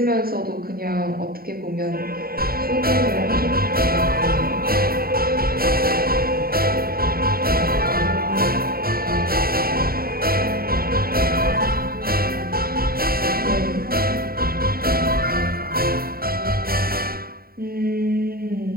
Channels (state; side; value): late; left; 0.43 ms